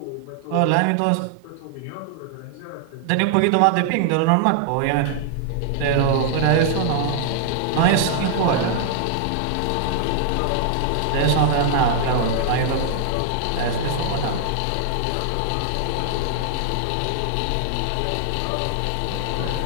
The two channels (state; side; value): different; both; correlation -0.01